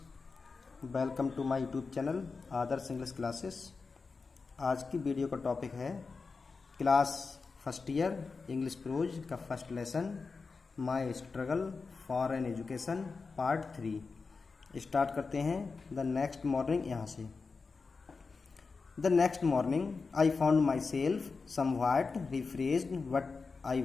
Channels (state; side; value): quieter; right; 4.5 dB